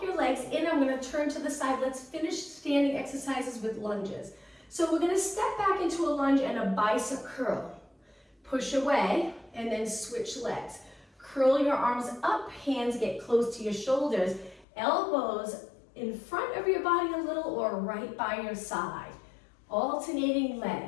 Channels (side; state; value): right; drops out; at 14.7 s